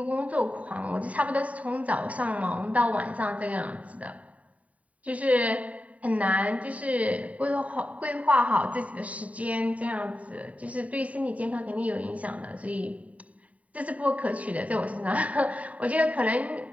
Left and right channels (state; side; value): late; left; 0.068 ms